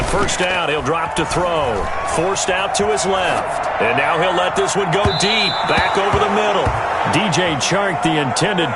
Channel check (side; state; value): both; identical; correlation 1.00